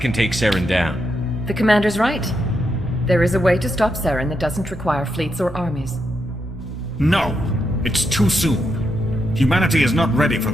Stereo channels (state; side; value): normal; both; correlation 0.82